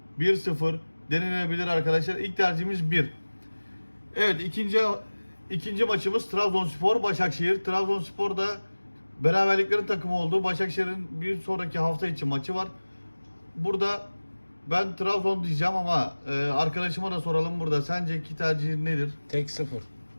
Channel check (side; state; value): both; inverted; correlation -1.00